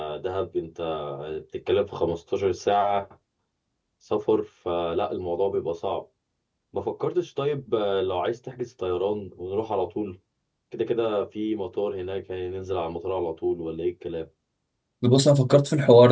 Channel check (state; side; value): identical; both; correlation 1.00